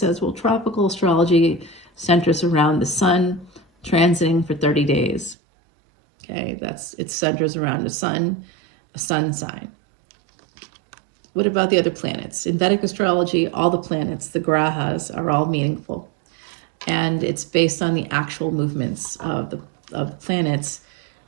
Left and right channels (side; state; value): left; drops out; at 5.4 s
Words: well, tropical astrology centers around the sun transiting for 30 days. Okay, it centers around the sun, a sun sign. What about the other planets? In Vedic astrology, all the planets, the grahas, are all meaningful. And it's based on the actual movements of the planets,